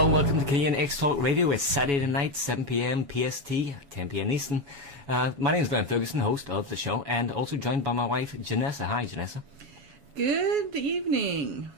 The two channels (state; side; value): late; left; 7.1 ms